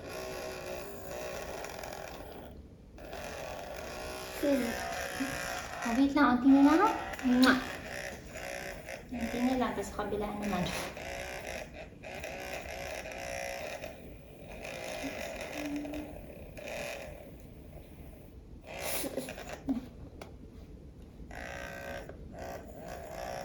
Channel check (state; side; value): identical; both; correlation 1.00